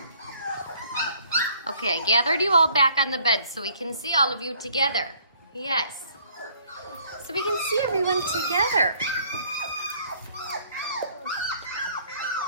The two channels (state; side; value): inverted; both; correlation -0.60